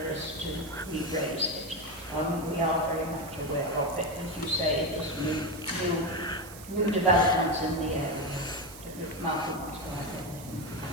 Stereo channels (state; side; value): noise; right; hiss, 16 dB below the sound